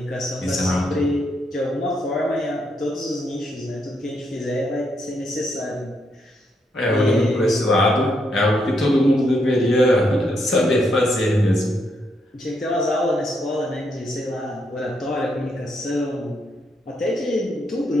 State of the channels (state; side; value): normal; both; correlation 0.78